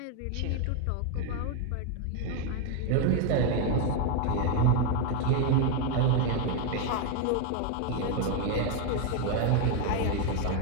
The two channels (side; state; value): both; different; correlation 0.01